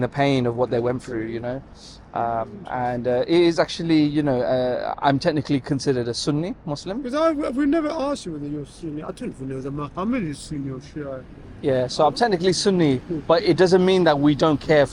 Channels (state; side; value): identical; both; correlation 1.00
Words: pain of what they went through, and it is actually, I'm technically considered a Sunni Muslim. Because we've never asked you whether you're Sunni. I don't even know whether Muhammad is Sunni or Shia. Yeah, so I'm technically Sunni, but it doesn't mean that we don't care